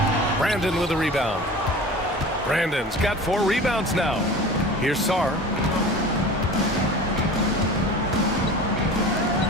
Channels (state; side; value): normal; both; correlation 0.37